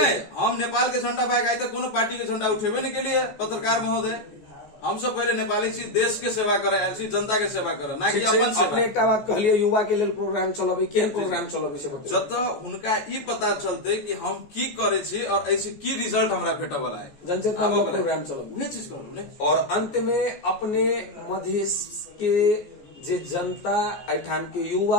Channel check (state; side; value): late; right; 14 ms